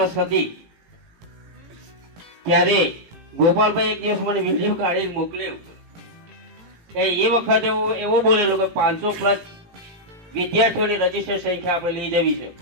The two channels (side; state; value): left; late; 18 ms